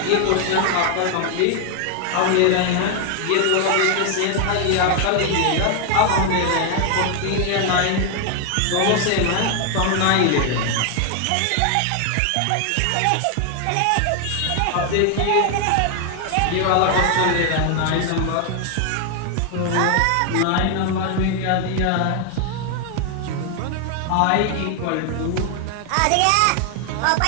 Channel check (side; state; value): both; different; correlation 0.01